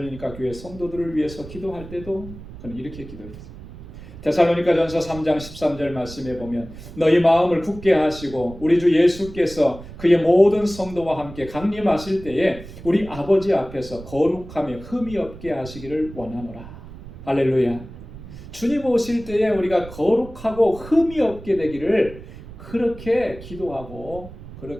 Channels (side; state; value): right; noise; rumble, 15 dB below the sound